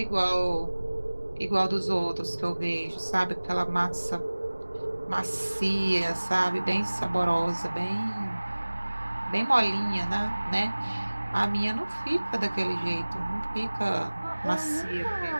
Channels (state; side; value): inverted; both; correlation -1.00